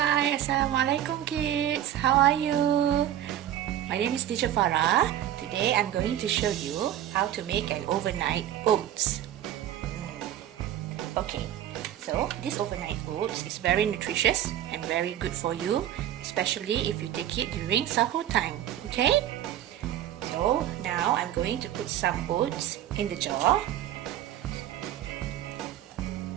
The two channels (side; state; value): left; quieter; 11.8 dB